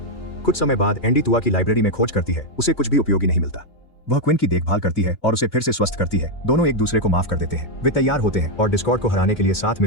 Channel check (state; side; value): late; right; 2.7 ms